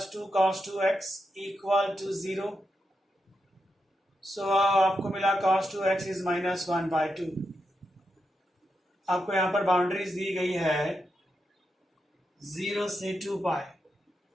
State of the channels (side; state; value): both; normal; correlation 0.86